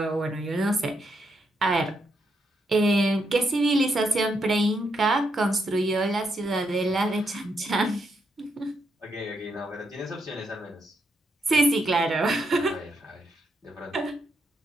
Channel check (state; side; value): normal; both; correlation 0.79